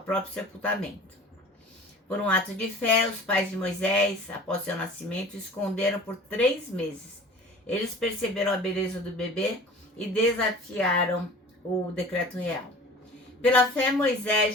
próprio sepultamento. Por um ato de fé, os pais de Moisés, após seu nascimento, o esconderam por 3 meses. Eles perceberam a beleza do bebê e desafiaram o decreto real. Pela fé,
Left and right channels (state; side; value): normal; both; correlation 0.43